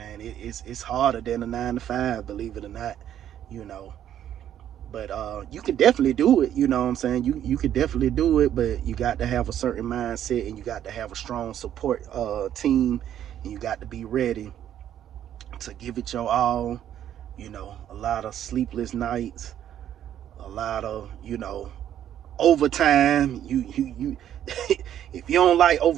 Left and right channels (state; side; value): quieter; left; 10.7 dB